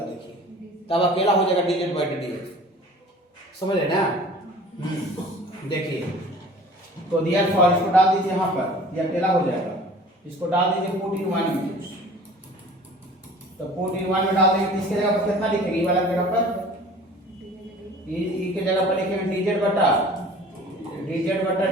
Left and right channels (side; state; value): both; normal; correlation 0.46